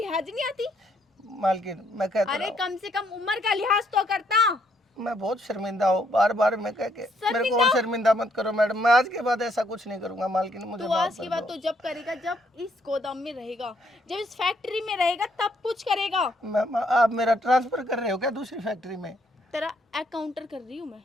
नहीं आती? मालकिन मैं कहता अरे हूँ, कम से कम उम्र का लिहाज तो करता। मैं बहुत शर्मिंदा हूँ, बार मैं कह के मेरे को और शर्मिंदा मत करो मैडम। मैं आज के बाद ऐसा कुछ नहीं करूँगा मालकिन, मुझे तू माफ आज की कर बात दो। तो जब करेगा जब इस गोदाम में रहेगा, जब इस फैक्ट्री में रहेगा तब कुछ करेगा। आप मेरा ट्रांसफर कर रहे हो क्या दूसरी फैक्ट्री में? तेरा अकाउंटर कर रही हूँ मैं।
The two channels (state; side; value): normal; both; correlation 0.70